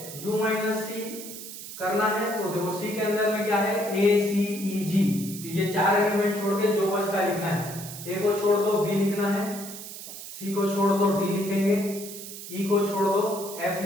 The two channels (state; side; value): noise; right; hiss, 11 dB below the sound